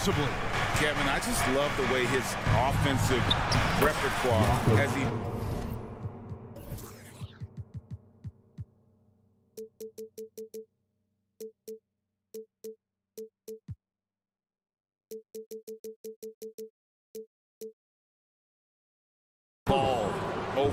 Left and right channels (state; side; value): identical; both; correlation 1.00